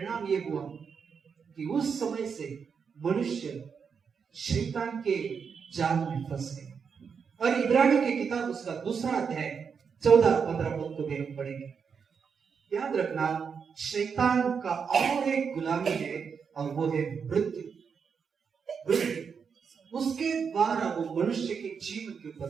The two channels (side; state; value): left; quieter; 6.3 dB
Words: ये हुआ कि उस समय से मनुष्य शैतान के जाल में फंस गए। और इब्रानियों की किताब उसका 2 अध्याय 14-15 पद को भी हम पढ़ेंगे। याद रखना, शैतान का और एक गुलामी है, और वो है मृत्यु। उसके द्वारा वो मनुष्य के जीवन के